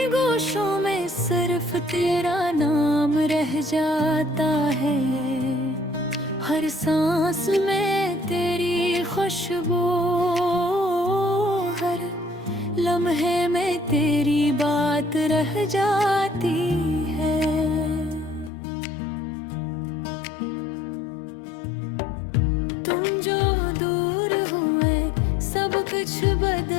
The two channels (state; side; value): drops out; right; at 18.5 s